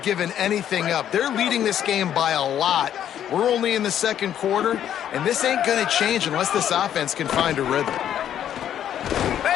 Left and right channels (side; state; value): right; quieter; 10.3 dB